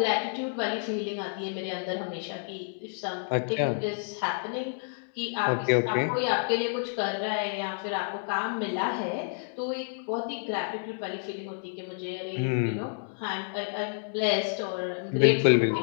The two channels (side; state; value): right; silent; digital silence